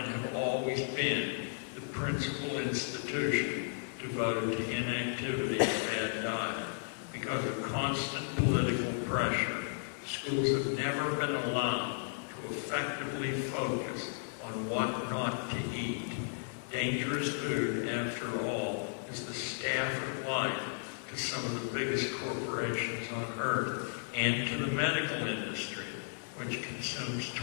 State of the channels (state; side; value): silent; right; digital silence